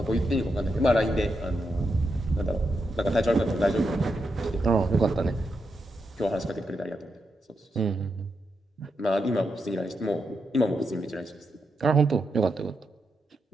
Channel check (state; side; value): normal; both; correlation 0.84